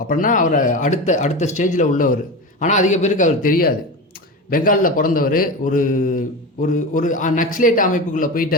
அவரை அடுத்த ஸ்டேஜில் உள்ளவர். ஆனால் அதிக பேருக்கு அவர் தெரியாது. பெங்காலில் பிறந்தவர், ஒரு ஒரு ஒரு நக்ஸலைட் அமைப்புக்குள்ளே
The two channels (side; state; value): both; normal; correlation 0.24